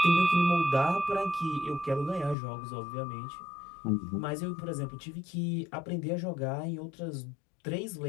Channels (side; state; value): right; drops out; at 2.4 s